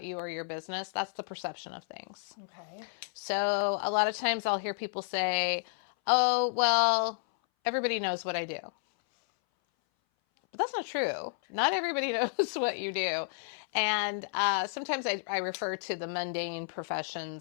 you or your business, that's the perception of things. Okay. So a lot of times I'll hear people say, oh, well, everybody knows what I do. But that's not true. Not everybody knows what you do. And sometimes I refer to the mundane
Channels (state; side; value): silent; right; 57 dB below the other